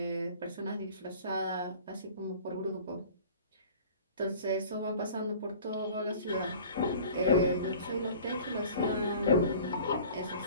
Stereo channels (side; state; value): both; inverted; correlation -0.45